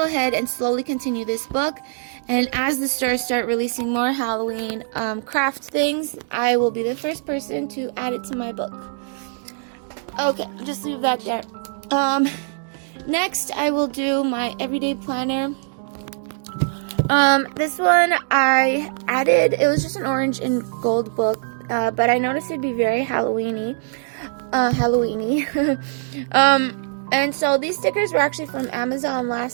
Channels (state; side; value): silent; left; digital silence